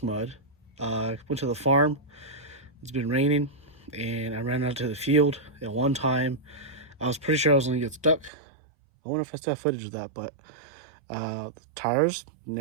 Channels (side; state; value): left; drops out; at 8.3 s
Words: mud. Went to the farm. It's been raining, and I ran out to the field at one time. I was pretty sure I was going to get stuck. I wonder if I still have footage of that, but the tires